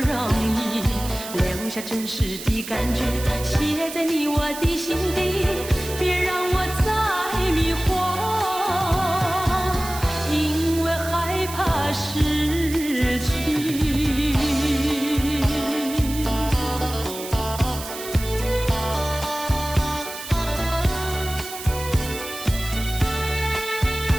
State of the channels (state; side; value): noise; right; hiss, 11 dB below the sound